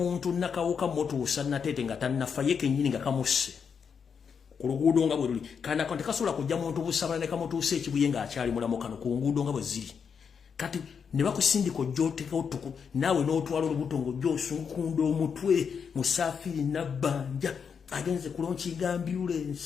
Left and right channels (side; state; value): right; quieter; 6.6 dB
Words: nakawuka motuusa natete nga tannafa ye kennyini nga kamusse ku luguudo nga bwe luli kana tekasobola kujja muntu busabala ne kamutuusa ekibuye nga akyali mulamu kano ku nguudo nga bwe ziri. Kati ne bakusindika ojjooteka otuku naawe n'otwala olubuto ng'ojjoosunkunda omutwe Musafiri Nabbanja agenze kulonkinga